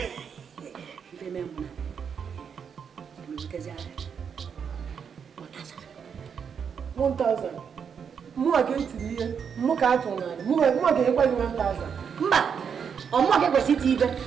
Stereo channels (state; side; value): quieter; left; 7.0 dB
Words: ife mee mụ na emebutezi aka 1000 mụnwa ka etiri ihe mụ ka atụ n'ala mụnwa ga-enyekwa gị 1000 mba ọmụma ka ekwesị iti ibe